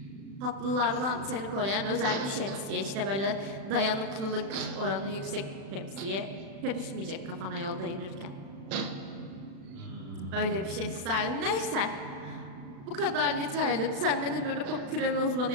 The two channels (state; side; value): late; left; 36 ms